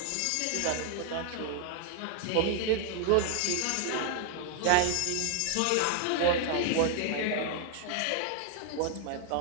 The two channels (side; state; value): both; different; correlation 0.00